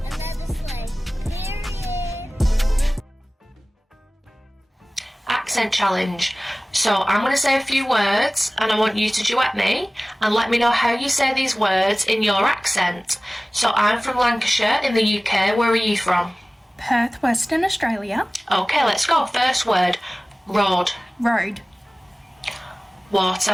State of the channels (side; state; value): both; normal; correlation 0.98